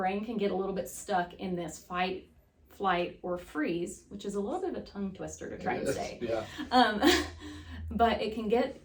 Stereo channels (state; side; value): identical; both; correlation 1.00